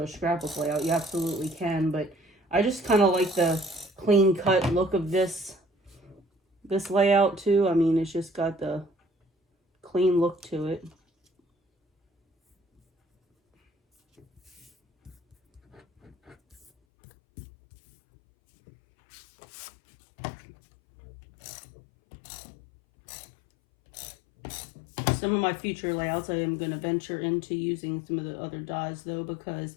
scrapbook layout. You absolutely can, but I just kind of like the clean cut look of this layout too. I mean, it's just got the clean look to it. Some of my future layouts I am going to venture into using some of the other dies though, because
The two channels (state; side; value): drops out; right; at 16.7 s